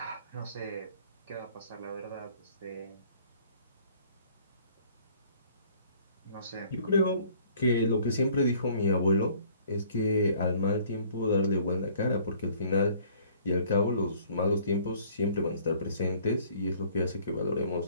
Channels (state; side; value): inverted; both; correlation -0.56